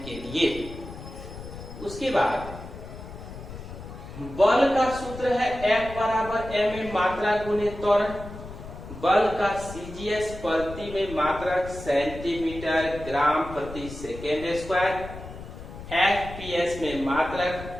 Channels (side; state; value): left; noise; rumble, 12 dB below the sound